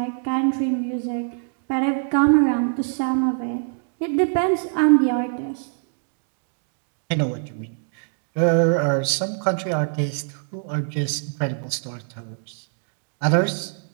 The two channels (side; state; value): left; silent; digital silence